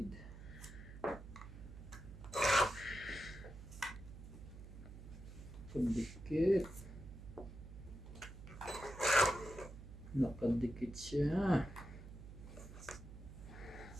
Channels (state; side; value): noise; right; hum, 13 dB below the sound